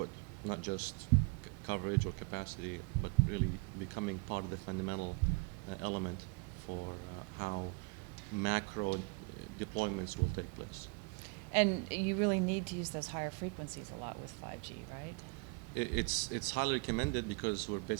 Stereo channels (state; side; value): quieter; left; 31.6 dB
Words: not just coverage or capacity, but really becoming part of the fundamental element for how macro deployments will take place. And you really need to use those higher frequencies a lot with 5G, right? It's highly recommended because we're